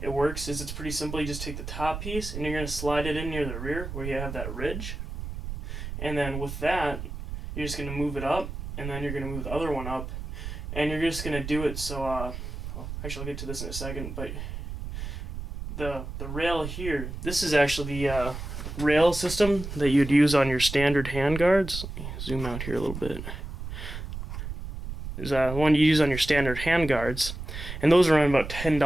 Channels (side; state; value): right; noise; rumble, 7 dB below the sound